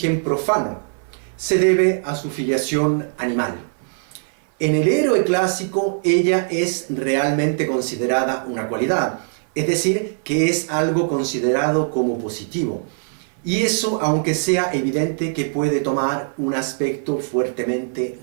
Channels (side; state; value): left; silent; 58 dB below the other